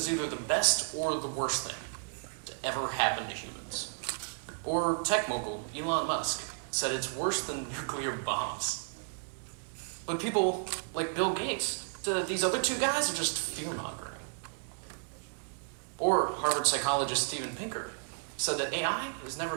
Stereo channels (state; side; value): silent; left; 56 dB below the other